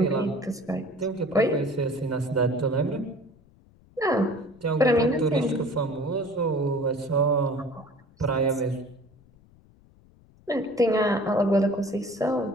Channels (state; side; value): noise; left; rumble, 28 dB below the sound